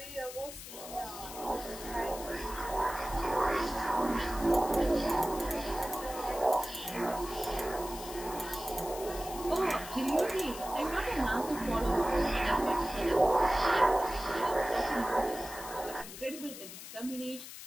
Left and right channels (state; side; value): noise; left; hiss, 12 dB below the sound